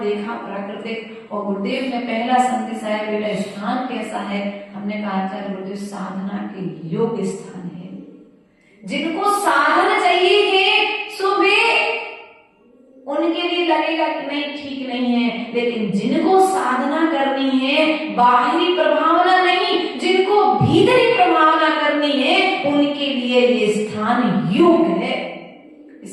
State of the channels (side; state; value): both; identical; correlation 1.00